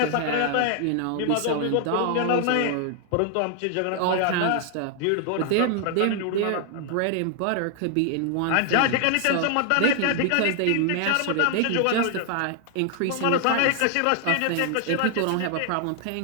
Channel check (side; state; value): both; different; correlation 0.00